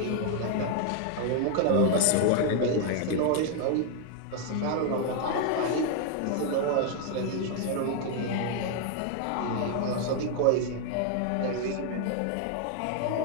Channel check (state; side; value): different; both; correlation 0.00